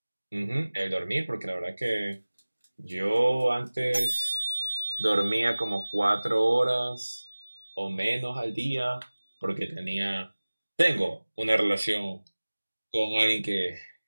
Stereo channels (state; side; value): inverted; both; correlation -1.00